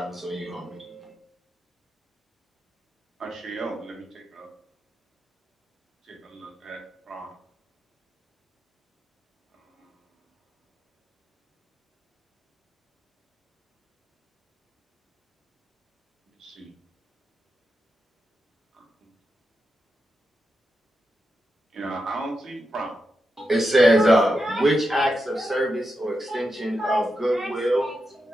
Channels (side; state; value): both; normal; correlation 0.87